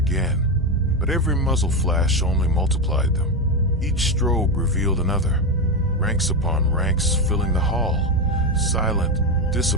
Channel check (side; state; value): both; normal; correlation 0.12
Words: but every muzzle flash only multiplied them. Each strobe revealed another, ranks upon ranks filling the hall, silent,